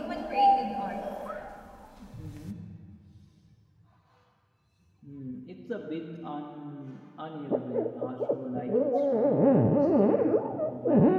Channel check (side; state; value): both; identical; correlation 1.00